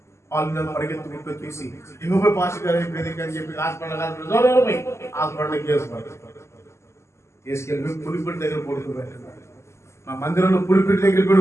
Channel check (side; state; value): right; late; 0.13 ms